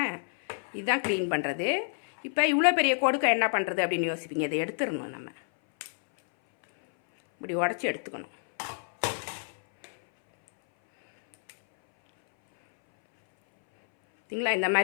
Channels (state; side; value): silent; right; 59 dB below the other